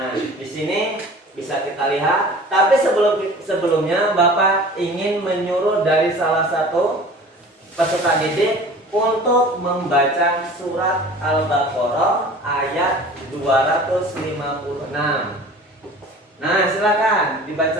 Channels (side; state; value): both; normal; correlation 0.43